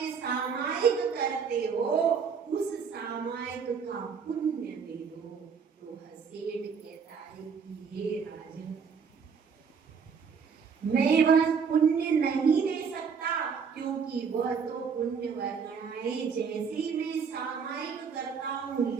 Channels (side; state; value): left; quieter; 6.1 dB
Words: सामायिक करते हो उस सामायिक का पुण्य दे दो। तो सेठ कहता है कि हे राजन, मैं वह पुण्य नहीं दे सकता, क्योंकि वह तो पुण्य वर्गणाएं जैसे मैं सामायिक करता हूँ,